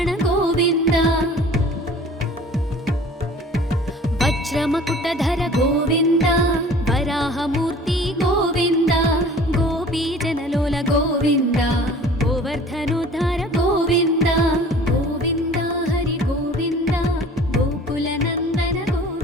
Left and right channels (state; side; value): normal; both; correlation 0.47